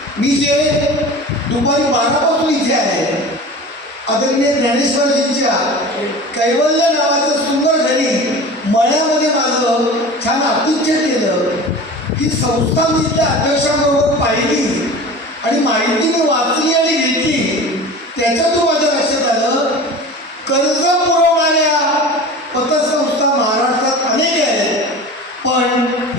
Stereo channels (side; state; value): both; normal; correlation 0.36